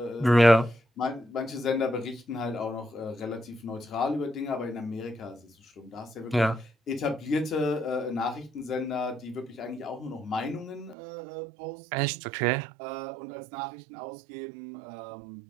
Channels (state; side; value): drops out; left; at 11.0 s